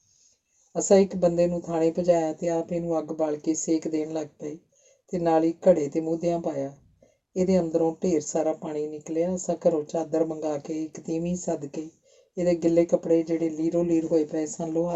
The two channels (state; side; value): identical; both; correlation 1.00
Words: ਅਸਾਂ ਇੱਕ ਬੰਦੇ ਨੂੰ ਥਾਣੇ ਭਜਾਇਆ ਤੇ ਆਪ ਇਹਨੂੰ ਅੱਗ ਬਾਲ ਕੇ ਸੇਕ ਦੇਣ ਲੱਗ ਪਏ ਤੇ ਨਾਲ ਹੀ ਘੜੇ ਤੇ ਮੂਧਿਆਂ ਪਾਇਆ। ਇਹਦੇ ਅੰਦਰੋਂ ਢੇਰ ਸਾਰਾ ਪਾਣੀ ਨਿਕਲਿਆ। ਅਸਾਂ ਘਰੋਂ ਚਾਦਰ ਮੰਗਾ ਕੇ ਇੱਕ ਤੀਵੀਂ ਸੱਦ ਕੇ ਇਹਦੇ ਗਿੱਲੇ ਕੱਪੜੇ ਜਿਹੜੇ ਲੀਰੋ ਲੀਰ ਹੋਏ ਪਏ ਸਨ